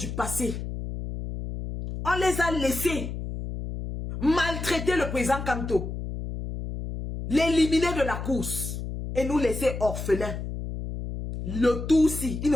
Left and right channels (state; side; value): noise; left; hum, 6 dB below the sound